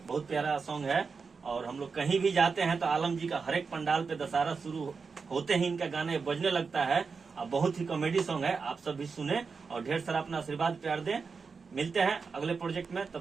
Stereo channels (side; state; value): left; quieter; 5.0 dB